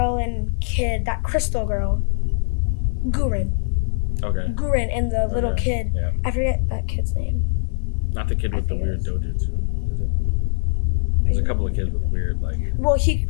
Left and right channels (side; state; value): right; silent; 64 dB below the other